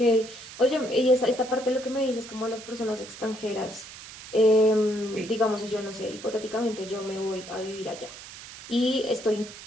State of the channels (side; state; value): right; noise; hiss, 15 dB below the sound